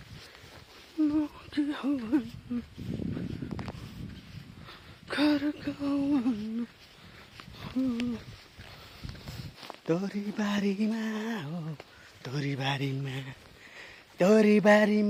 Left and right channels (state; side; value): identical; both; correlation 1.00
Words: तोरीबारीमा हो तोरीबारीमा